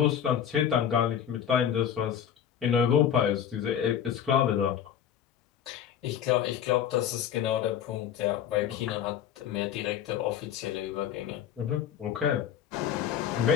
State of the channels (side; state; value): right; quieter; 9.2 dB